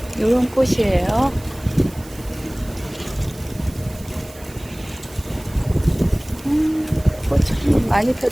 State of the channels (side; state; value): right; noise; hiss, 21 dB below the sound